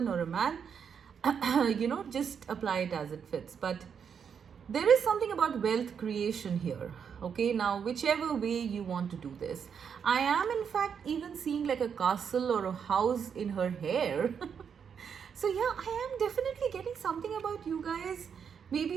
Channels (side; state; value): left; quieter; 7.1 dB